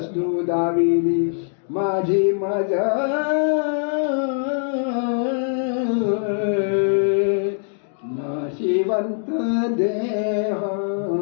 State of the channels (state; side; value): silent; right; digital silence